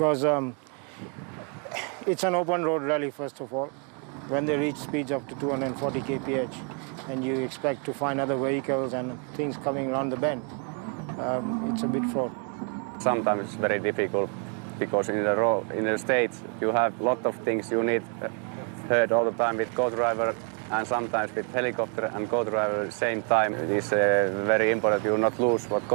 it's an open road rally, first of all. When they reach speeds up to 240 kph and you expect to find other vehicles and things coming around the bend, it's a bit fraught. Sometimes it's very difficult because in the States you have a lot of things you need heard all the time with co-driver and sometimes with helicopter and co-driver at the same time. It is very important you not lose what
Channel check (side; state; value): left; quieter; 39.2 dB